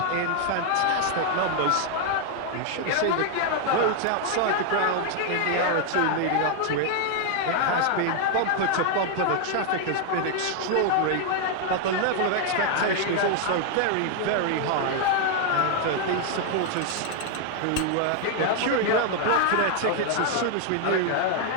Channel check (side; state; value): both; different; correlation 0.00